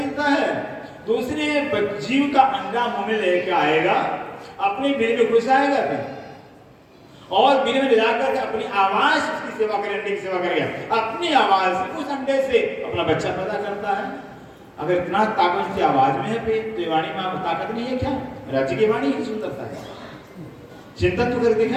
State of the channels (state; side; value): identical; both; correlation 1.00